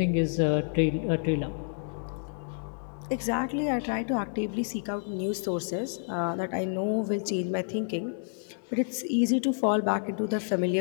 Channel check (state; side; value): silent; right; digital silence